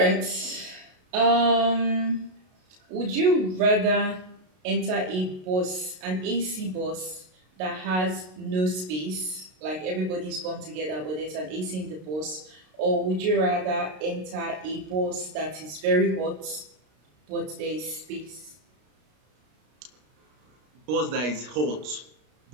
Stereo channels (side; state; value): left; late; 33 ms